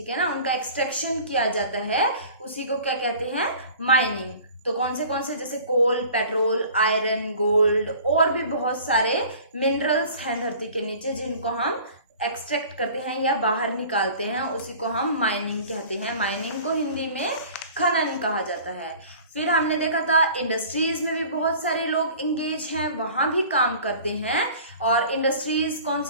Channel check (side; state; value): both; inverted; correlation -0.45